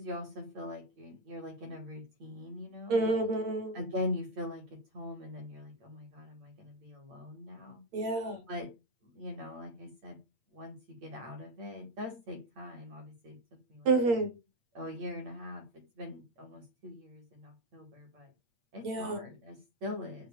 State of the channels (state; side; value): late; left; 8.6 ms